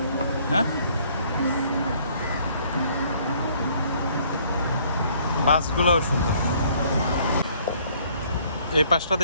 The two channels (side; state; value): both; inverted; correlation -0.61